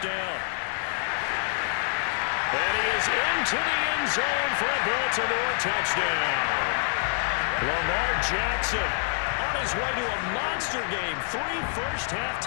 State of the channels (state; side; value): silent; right; digital silence